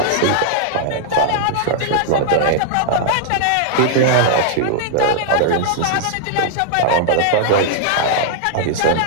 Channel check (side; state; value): both; different; correlation -0.01